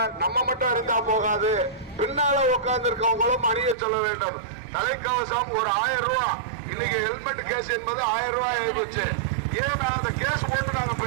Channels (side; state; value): left; drops out; at 3.8 s